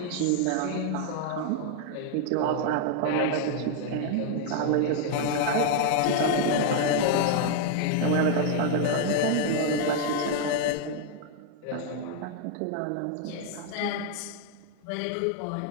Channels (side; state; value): both; different; correlation 0.00